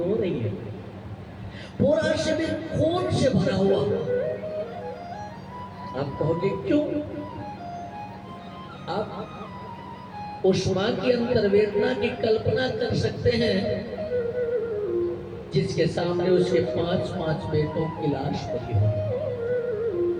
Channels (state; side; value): identical; both; correlation 1.00